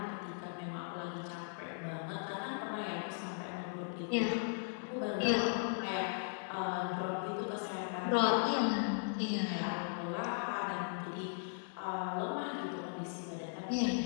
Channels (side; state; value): right; silent; digital silence